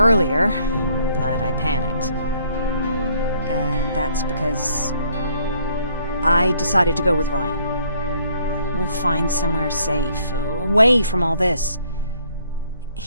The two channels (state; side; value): inverted; both; correlation -0.64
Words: but I panicked. And that's because I decided to go with Ryan. We'll find somewhere safe, away from all this.